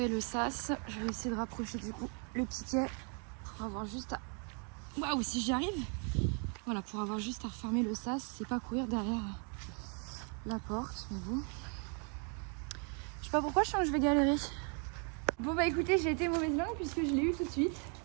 le sas. Je vais essayer de rapprocher du coup le piquet pour avoir juste à... Waouh, si j'y arrive. Voilà, pour avoir juste à refermer le sas, c'est pas courir derrière la porte, mais bon. Je sais pas pourquoi, je sens que je vais galérer. Bon bah écoutez, j'ai été mauvaise langue puisque je l'ai eu tout de suite.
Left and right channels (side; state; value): left; quieter; 38.8 dB